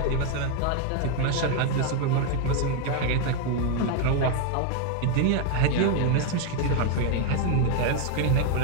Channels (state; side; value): different; both; correlation 0.00